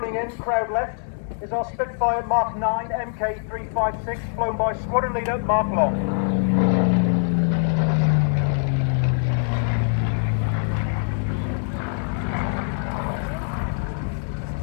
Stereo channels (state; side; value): silent; right; digital silence